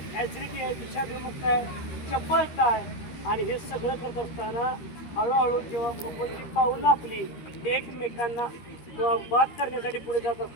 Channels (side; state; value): right; late; 13 ms